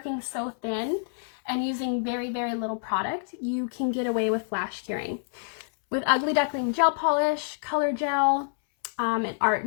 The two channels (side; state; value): right; silent; 60 dB below the other